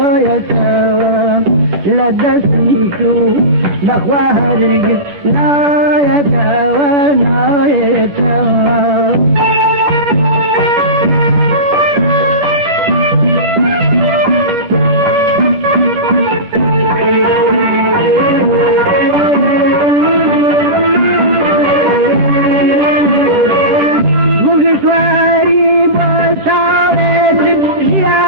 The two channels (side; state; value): left; late; 10 ms